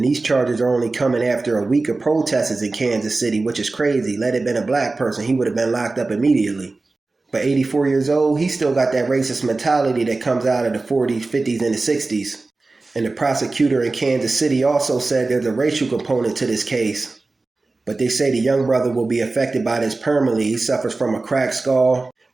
these charges are only coming after a week of protests in Kansas City, which is crazy. Let it been a black person, he would have been locked up immediately. But 84 years old, he still got that racist mentality that comes out of the 40s, 50s, and the 60s. And the prosecutor in Kansas City also said there's a racial component to this case. But they say the young brother will be affected by this permanently. He suffers from a cracked skull,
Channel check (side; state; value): left; quieter; 3.4 dB